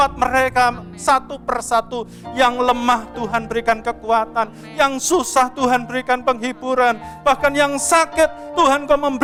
mereka satu persatu. Yang lemah Tuhan berikan kekuatan, yang susah Tuhan berikan penghiburan, bahkan yang sakit Tuhan Engkau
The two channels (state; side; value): identical; both; correlation 1.00